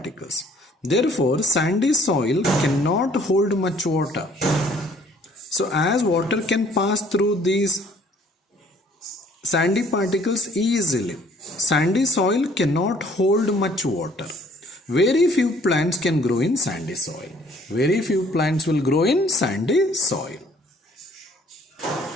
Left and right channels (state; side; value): normal; both; correlation 0.59